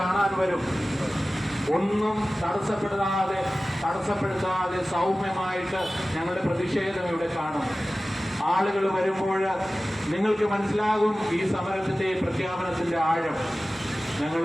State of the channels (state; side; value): normal; both; correlation 0.96